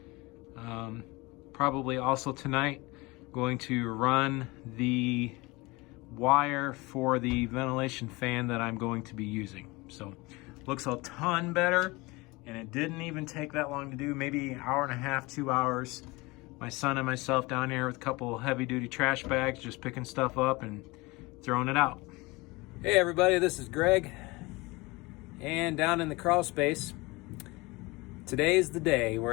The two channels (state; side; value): quieter; right; 23.5 dB